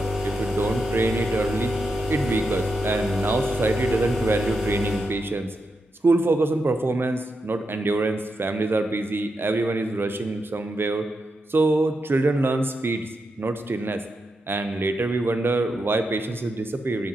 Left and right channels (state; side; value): normal; both; correlation 0.85